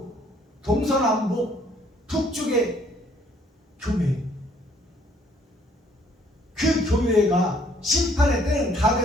동서남북 북쪽의 교회. 그 교회가 심판의 때는 다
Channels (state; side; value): normal; both; correlation 0.63